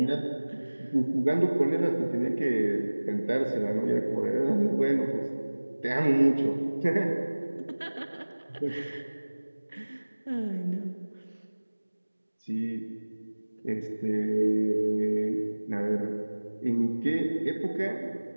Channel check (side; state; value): both; inverted; correlation -1.00